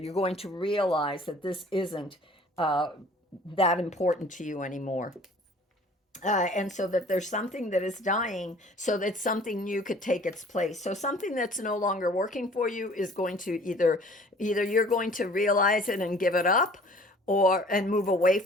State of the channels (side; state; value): both; normal; correlation 0.51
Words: going to realize that this isn't uh, that important to you anymore. And so that there's something that is dying so that something new could take its place. So something that's no longer working for you is going to either you're going to realize it and give it up, or and move away